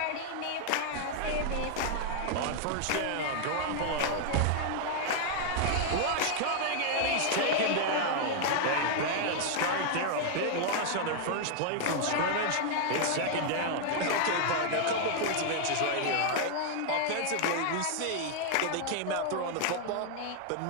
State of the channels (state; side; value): different; both; correlation 0.00